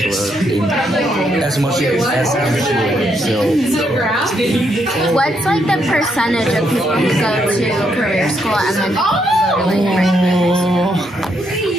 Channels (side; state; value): both; normal; correlation 0.76